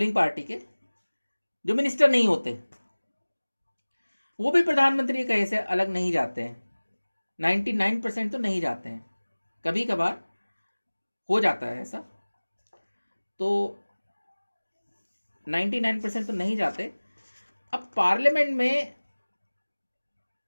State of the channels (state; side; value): inverted; both; correlation -1.00